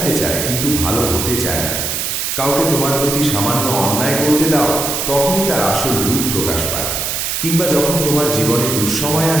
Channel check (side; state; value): right; noise; hiss, 2 dB below the sound